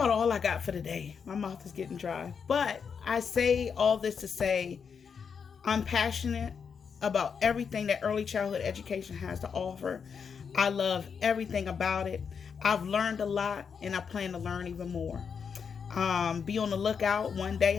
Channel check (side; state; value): right; quieter; 6.4 dB